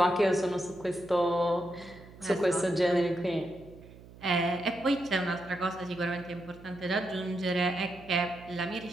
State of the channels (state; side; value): noise; right; hum, 20 dB below the sound